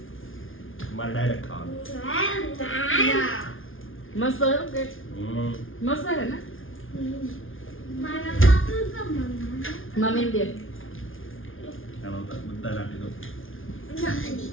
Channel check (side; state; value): right; late; 0.58 ms